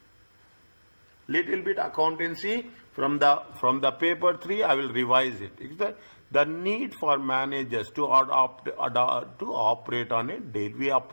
Little bit accountancy from the paper 3, I will revise it. Is that the need for managers to operate on a day? We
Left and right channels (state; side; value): inverted; both; correlation -1.00